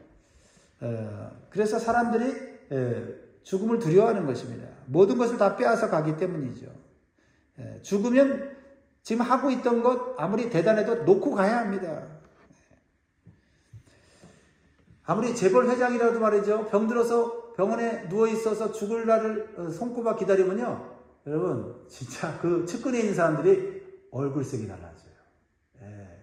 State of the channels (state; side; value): identical; both; correlation 1.00